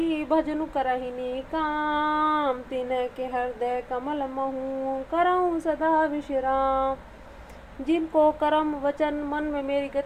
भजनु करहिनी काम, तिन्ह के हृदय कमल महू, करऊँ सदा विश्राम। जिनको कर्म वचन मन में मेरी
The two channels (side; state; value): both; identical; correlation 1.00